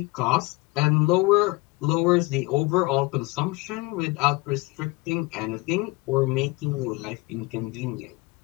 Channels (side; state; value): right; quieter; 23.8 dB